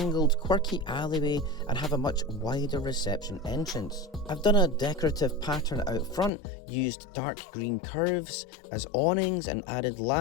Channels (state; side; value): drops out; right; at 6.3 s